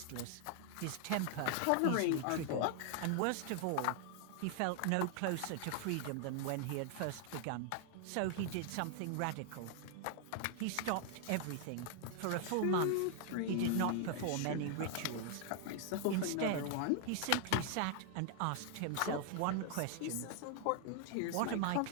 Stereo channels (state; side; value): different; both; correlation 0.00